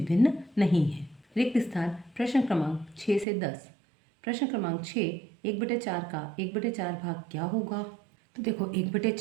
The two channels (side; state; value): left; drops out; at 3.2 s